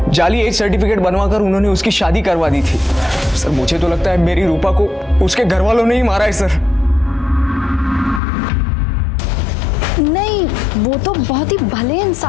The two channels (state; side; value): drops out; right; at 8.2 s